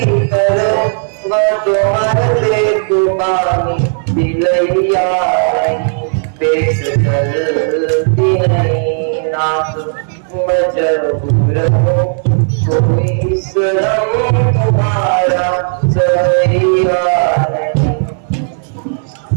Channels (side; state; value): left; silent; digital silence